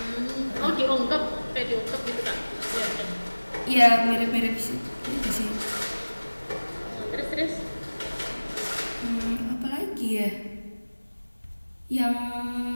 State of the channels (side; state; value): both; inverted; correlation -1.00